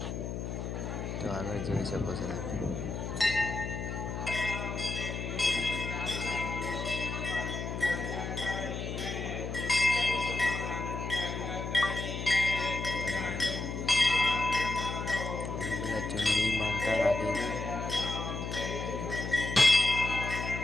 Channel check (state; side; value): noise; left; hum, 5 dB below the sound